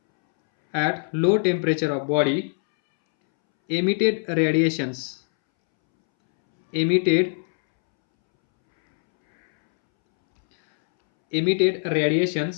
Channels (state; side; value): silent; right; 64 dB below the other